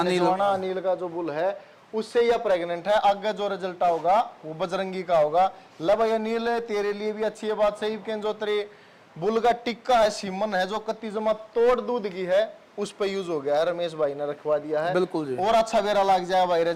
जवाना अनिल का जो बुल है उससे यह प्रेग्नेंट है। आगे जो रिजल्ट होगा वो बजरंगी का होगा। ला भाई अनिल तेरे लिए भी अच्छी है बात सही के जो तेरे बुल का टिक्का है सीमन है जो कत्ती जमा तोड़ दूध की है उस पे यूज हो गया है, रमेश भाई ने रखवा दिया है। बिल्कुल जी। और अच्छा बेरा लग जाए भाई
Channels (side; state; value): both; identical; correlation 1.00